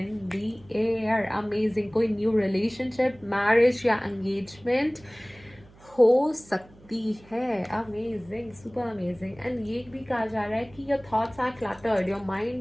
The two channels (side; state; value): right; noise; hum, 25 dB below the sound